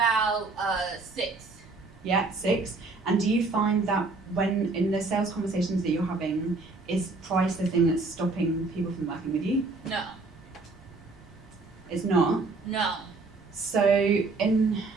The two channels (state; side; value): quieter; left; 3.6 dB